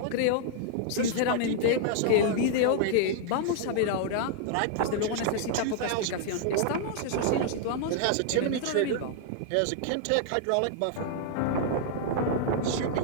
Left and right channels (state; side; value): different; both; correlation -0.01